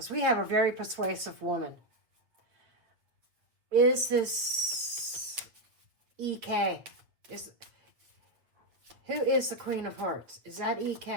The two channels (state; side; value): late; left; 7.9 ms